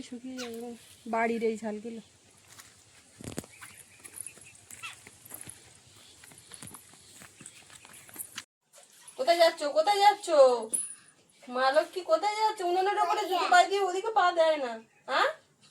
শুকিয়ে যাবে বাড়ির এই ঝালগুলো। কোথায় যাচ্ছ, কোথায় যাচ্ছ মা লক্ষ্মী, কোথায় যাচ্ছ? উনুনের ওপরে জুতো পা দিয়ে ওদিকে পা দেয় না। হ্যাঁ,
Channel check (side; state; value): both; identical; correlation 1.00